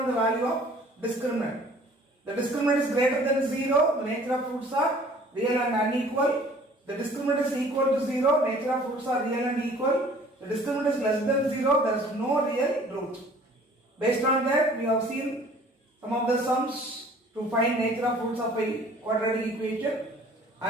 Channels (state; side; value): normal; both; correlation 0.52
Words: the value of discriminant. The discriminant is greater than 0, the nature of roots are real and unequal. The discriminant is equal to 0, nature of roots are real and equal. The discriminant is less than 0, there is no real root. Based on that, we have seen some of the sums to find nature of roots of a quadratic equation